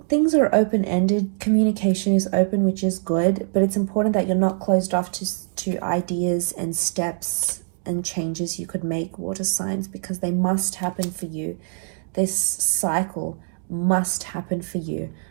are open-ended. Communication is open, which is good, but it's important that you're not closed off to ideas and steps and changes you could make, water signs, because they must happen for you. This cycle must happen for you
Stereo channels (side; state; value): left; silent; digital silence